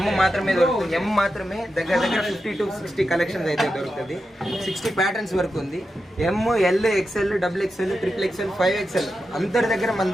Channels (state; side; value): normal; both; correlation 0.89